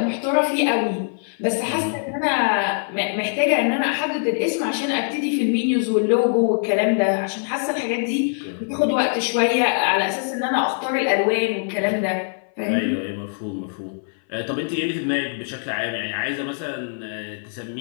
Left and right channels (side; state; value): right; silent; 59 dB below the other